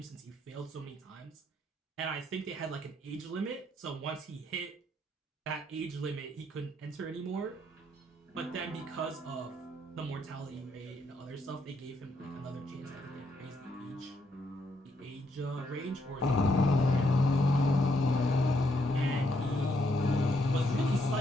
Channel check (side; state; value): both; normal; correlation 0.75